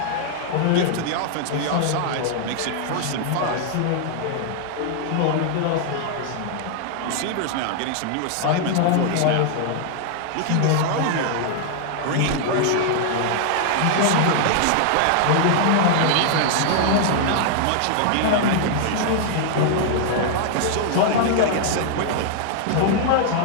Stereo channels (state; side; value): different; both; correlation 0.00